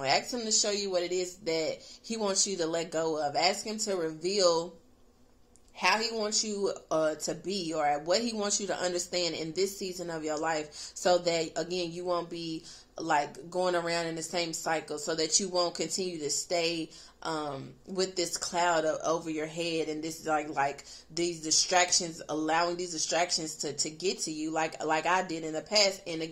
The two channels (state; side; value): identical; both; correlation 1.00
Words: Ask Him to show you what it is that He wants you to let go of. Ask Him to reveal how He wants you to be, or what He wants you to understand in this season of your life, so that, again, you won't be like going around in the same cycle, so that you won't continue to stay with this cloud over your head, and this like these distractions, allowing these distractions to get to you like I did in the past. And